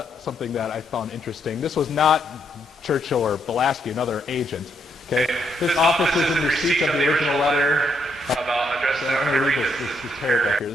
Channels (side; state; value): both; normal; correlation 0.75